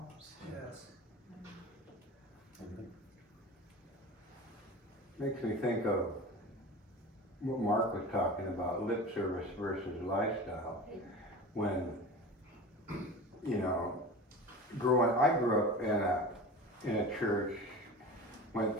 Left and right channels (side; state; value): both; normal; correlation 0.33